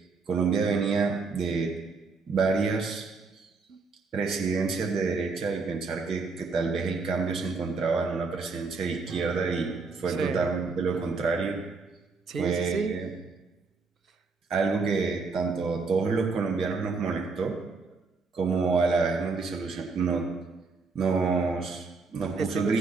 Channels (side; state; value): left; quieter; 4.3 dB